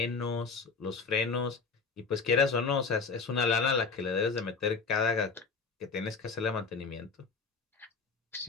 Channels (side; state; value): right; quieter; 4.8 dB